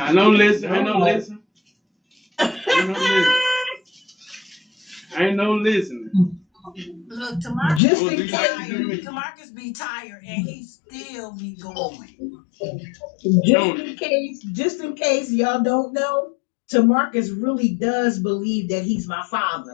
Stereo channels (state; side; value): drops out; right; at 7.8 s